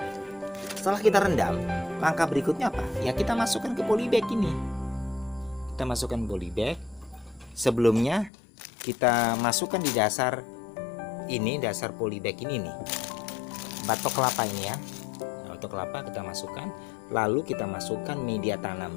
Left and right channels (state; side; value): drops out; right; at 8.3 s